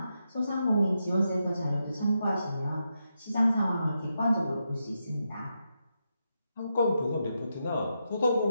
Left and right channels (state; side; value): inverted; both; correlation -0.85